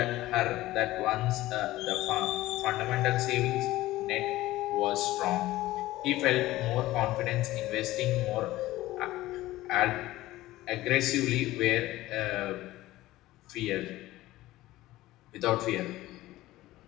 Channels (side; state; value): right; quieter; 16.8 dB